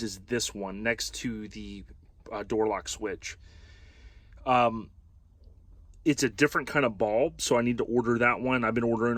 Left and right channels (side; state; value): both; identical; correlation 1.00